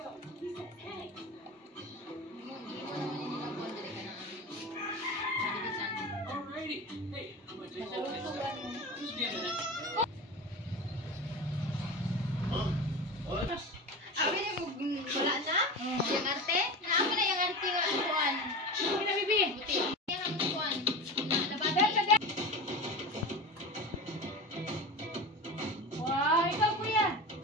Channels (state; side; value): normal; both; correlation 0.28